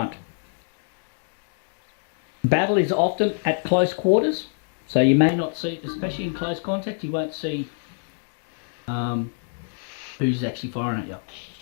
Battle is often at close quarters, so you may not see, especially in close contact, you won't see who's actually firing at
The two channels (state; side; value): silent; right; digital silence